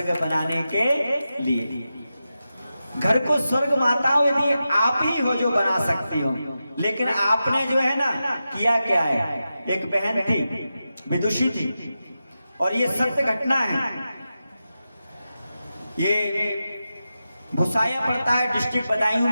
बनाने के लिए। घर को स्वर्ग माताओं यदि आप ही हो जो बना सकती हो, लेकिन आपने जो है ना किया क्या है? एक बहन थी, विदुषी थी, और ये सत्य घटना है। ये भुसाया पड़ता है डिस्ट्रिक्ट बदायूं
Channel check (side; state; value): both; inverted; correlation -0.91